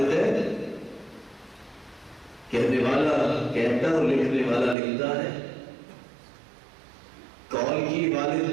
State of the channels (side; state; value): left; drops out; at 4.8 s